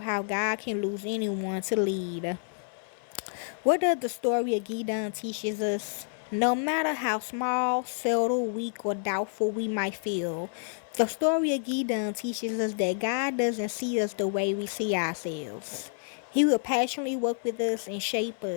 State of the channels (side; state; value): right; silent; 59 dB below the other